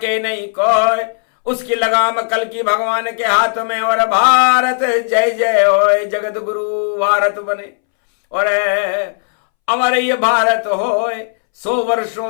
नहीं कोई, उसकी लगाम कल्कि भगवान के हाथ में। और भारत जय जय होए, जगत गुरु भारत बने, और अमर ये भारत होए। 100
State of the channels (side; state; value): right; silent; 67 dB below the other